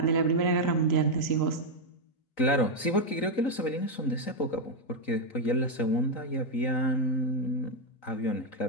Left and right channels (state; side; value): late; right; 3.9 ms